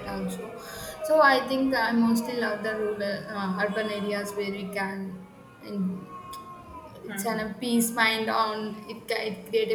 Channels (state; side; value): identical; both; correlation 1.00